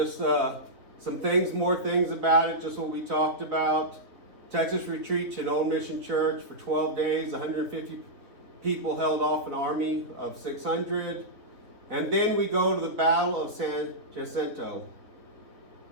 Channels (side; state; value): left; late; 3.8 ms